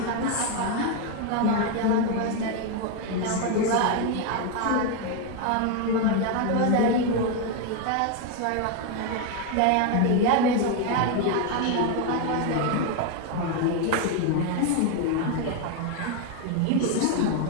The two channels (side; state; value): both; different; correlation 0.01